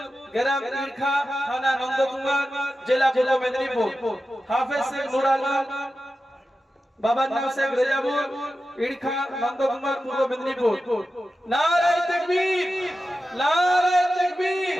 গ্রাম ইরখা, থানা নন্দকুমার, জেলা পূর্ব মেদিনীপুর। হাফেজ শেখ নূর আলম, বাবার নাম শেখ রেজাবুল, ইরখা, নন্দকুমার, পূর্ব মেদিনীপুর। নারে তাকবীর, নারে তাকবীর,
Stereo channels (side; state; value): both; normal; correlation 0.92